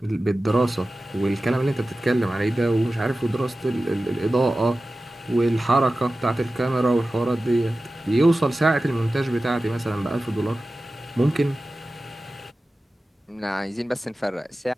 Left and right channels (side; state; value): both; normal; correlation 0.95